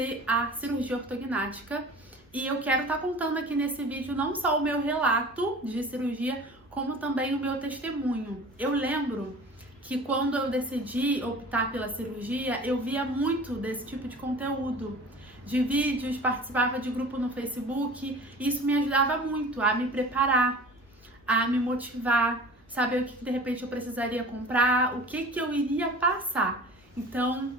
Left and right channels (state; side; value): normal; both; correlation 0.41